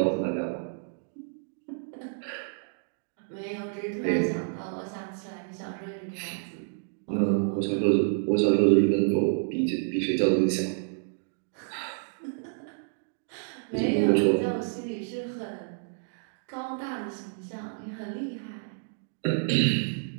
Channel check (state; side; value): silent; left; digital silence